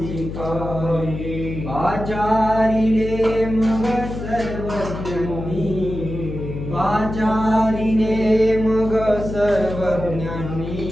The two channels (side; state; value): left; noise; hum, 7 dB below the sound